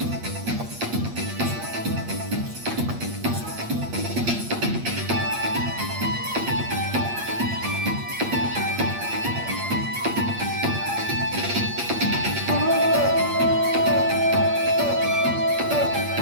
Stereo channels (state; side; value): late; left; 8.6 ms